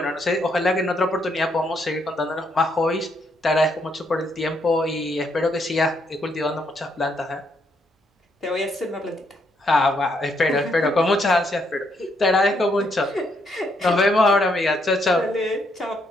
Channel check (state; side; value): normal; both; correlation 0.74